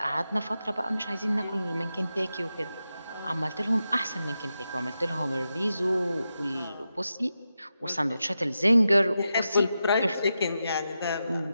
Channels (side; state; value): both; inverted; correlation -0.89